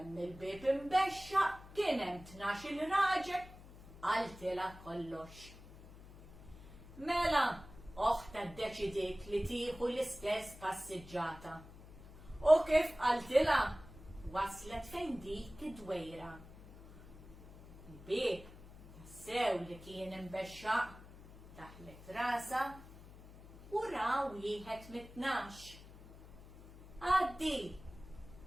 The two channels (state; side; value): noise; left; hum, 18 dB below the sound